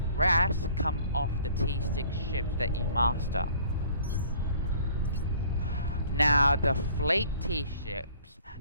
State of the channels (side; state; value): both; inverted; correlation -0.54